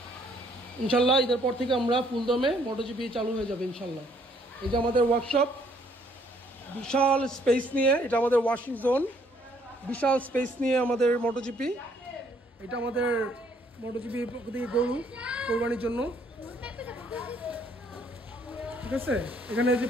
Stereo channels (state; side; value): normal; both; correlation 0.65